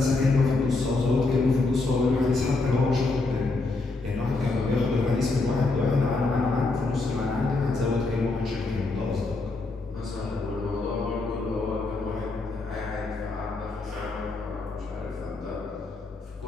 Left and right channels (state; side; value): quieter; right; 3.4 dB